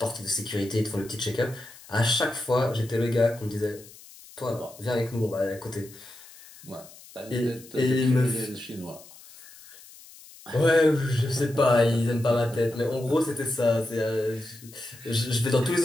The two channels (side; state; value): left; noise; hiss, 20 dB below the sound